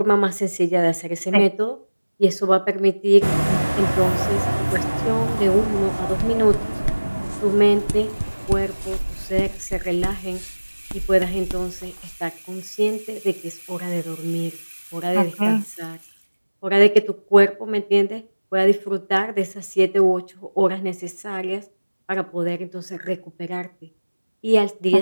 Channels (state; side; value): inverted; both; correlation -1.00